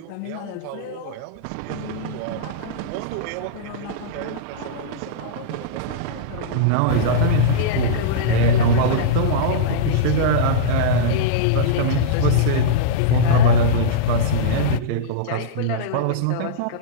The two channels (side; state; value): both; different; correlation -0.04